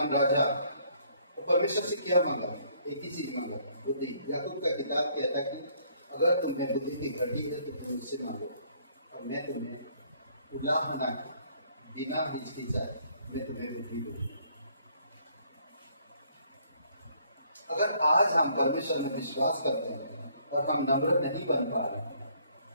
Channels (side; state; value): both; inverted; correlation -0.64